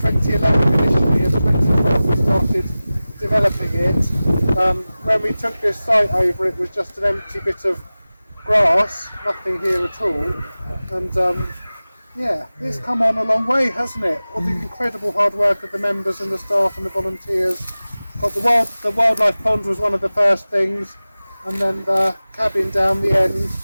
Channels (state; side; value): inverted; both; correlation -0.97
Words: initially, and 2012 we started developing it. When we took this site over, it was just an empty bit of grass, nothing here at all. And yeah, it's come on a long way, hasn't it? All the incredible hard work of the members and the staff and the volunteers. But the wildlife pond was one of the first things, and then the cabin down the end,